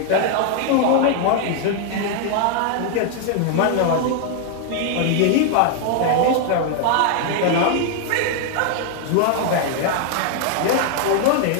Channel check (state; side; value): different; both; correlation 0.00